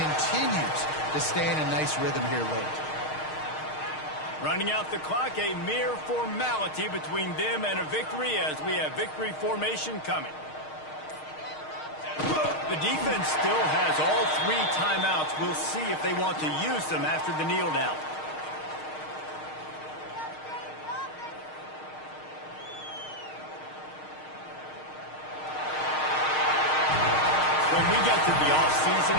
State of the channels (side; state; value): right; late; 6.5 ms